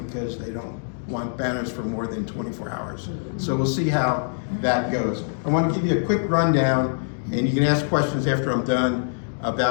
because they don't want banners for more than 24 hours. So we'll see how that goes. I want to give you a quick rundown, and you can ask questions after I'm done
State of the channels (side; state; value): right; silent; digital silence